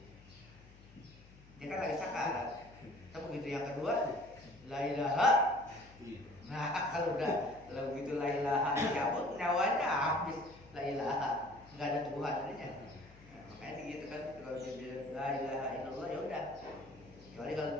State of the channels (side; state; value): left; noise; hum, 22 dB below the sound